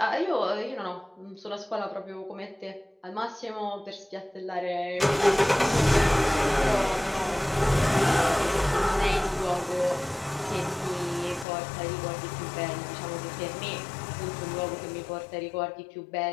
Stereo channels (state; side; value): drops out; right; at 11.5 s